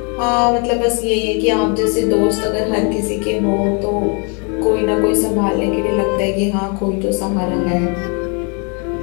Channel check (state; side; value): quieter; right; 35.4 dB